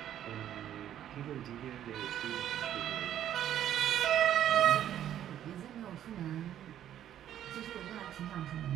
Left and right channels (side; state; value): left; quieter; 11.0 dB